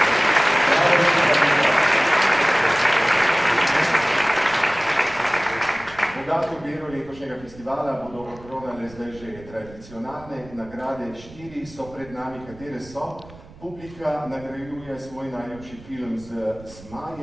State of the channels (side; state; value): right; noise; rumble, 20 dB below the sound